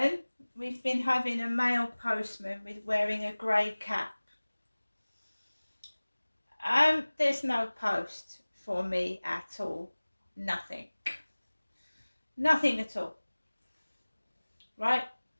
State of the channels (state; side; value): inverted; both; correlation -1.00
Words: we've been having a male postman with wearing a grey cap. There's no post for me at all. Nothing. Nothing at all. Right?